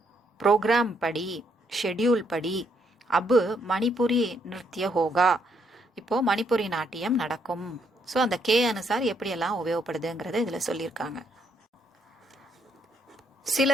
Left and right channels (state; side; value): normal; both; correlation 0.73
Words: ப்ரோக்ராம் படி, ஷெட்யூல் படி, அபு மணிப்புரி நிருத்திய ஹோகா, இப்போ மணிப்புரி நாட்டியம் நடக்கும். ஸோ அந்த கே அனுசார் எப்படியெல்லாம் உபயோகப்படுதுங்கிறத இதில் சொல்லியிருக்காங்க. சில